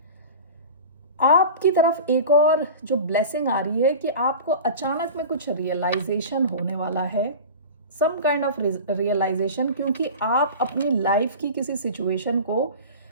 आपकी तरफ एक और जो ब्लेसिंग आ रही है कि आपको अचानक में कुछ रियलाइजेशन होने वाला है, सम काइंड ऑफ रियलाइजेशन, क्योंकि आप अपनी लाइफ की किसी सिचुएशन को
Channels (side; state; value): both; inverted; correlation -0.33